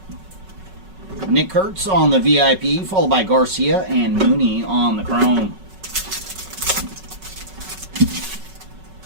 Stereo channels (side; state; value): left; late; 5.3 ms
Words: Nick Kurtz on the VIP, followed by Garcia and Mooney on the Chrome.